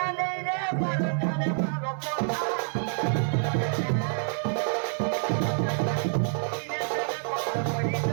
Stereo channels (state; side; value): silent; left; 60 dB below the other